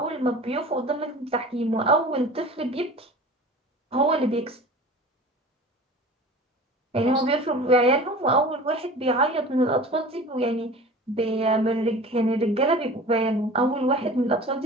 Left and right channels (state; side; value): normal; both; correlation 0.39